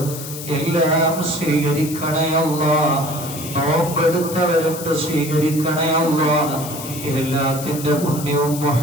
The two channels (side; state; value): left; noise; hiss, 10 dB below the sound